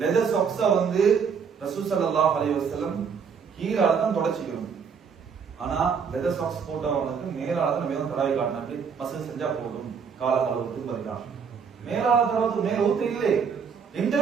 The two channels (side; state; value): left; quieter; 6.4 dB